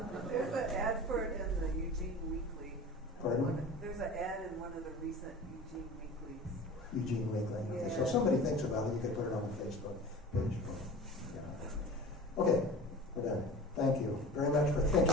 There's an ad for it in the Eugene Weekly. Pardon? There's an ad in one of the recent Eugene Weeklies. Eugene Weekly. Okay, Yeah. so if somebody thinks about it, you could put it on the Facebook page. Okay, we're done. Thank you very much for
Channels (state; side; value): normal; both; correlation 0.38